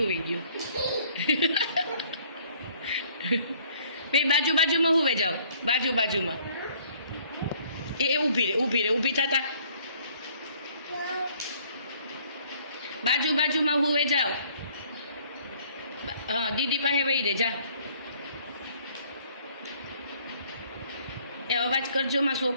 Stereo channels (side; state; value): both; inverted; correlation -0.59